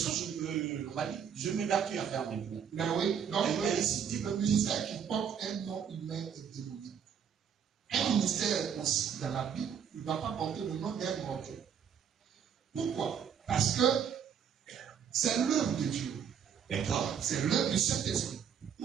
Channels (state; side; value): quieter; left; 7.8 dB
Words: que je m'évertue à faire maintenant. Mais oui, donc le ministère qui porte un nom humain est démoniaque. Un ministère aussi, dans la Bible, il ne va pas porter le nom d'un mortel. Pourquoi? Parce que c'est l'œuvre de Dieu. D'accord. C'est l'œuvre du Saint-Esprit.